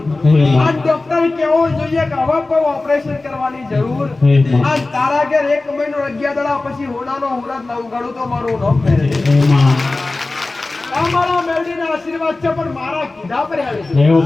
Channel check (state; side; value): quieter; right; 3.2 dB